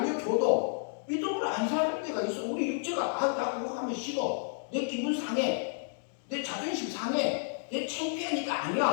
믿음으로 안 사는 데가 있어. 우리 육체가 나 그거 하면 싫어, 내 기분 상해, 내 자존심 상해, 내 창피하니까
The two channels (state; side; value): silent; right; digital silence